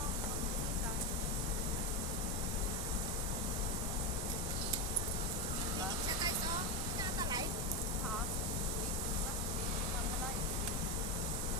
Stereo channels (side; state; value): both; normal; correlation 0.12